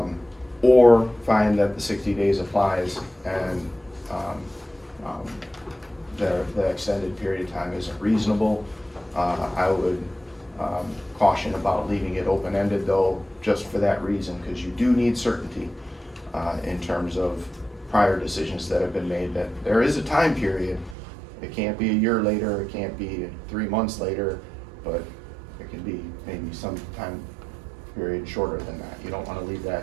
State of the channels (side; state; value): left; drops out; at 21.0 s